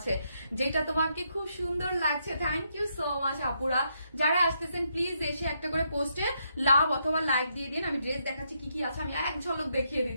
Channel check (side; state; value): both; inverted; correlation -0.77